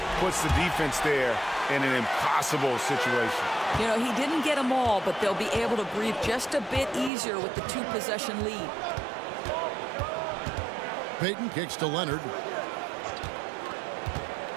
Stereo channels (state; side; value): drops out; left; at 7.1 s